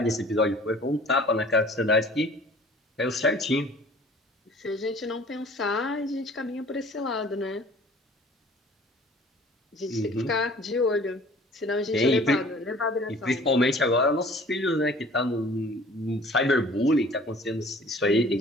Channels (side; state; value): both; normal; correlation 0.49